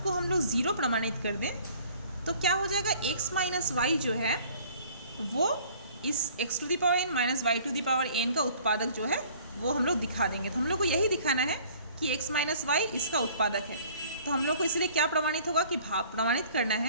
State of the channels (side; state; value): both; inverted; correlation -0.53